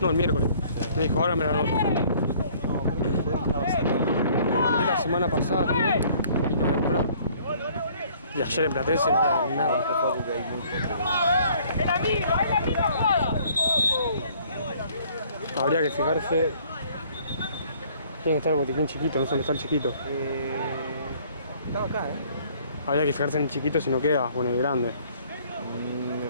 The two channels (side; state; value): both; inverted; correlation -0.58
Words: el miércoles. Me dijo, ahora me lo anoto. No, creo que fue, estaba cerrado. Le mandé la semana pasada también y no había comprado. Y ayer en Platense no había nada. ¡Es la misma jugada! Habría que fijarse. Tiene que estar el botiquín chiquito, no sé dónde está el chiquito. Estaba acá, Habría que fijarse en el chiquito si no queda, o en el grande. Me